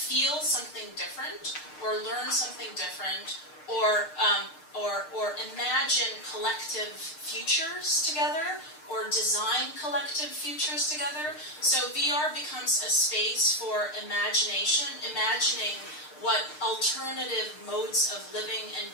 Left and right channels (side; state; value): right; late; 6.6 ms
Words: something different, or learn something different, or imagine collective futures together, or design collective futures together. So VR becomes a space for imagination, imagining what alternative modes of living and